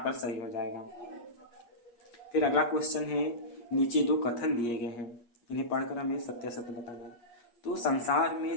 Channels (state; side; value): late; right; 8.4 ms